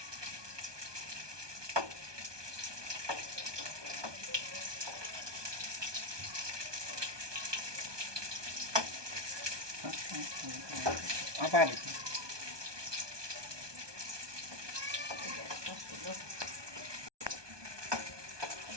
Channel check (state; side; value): late; left; 1.2 ms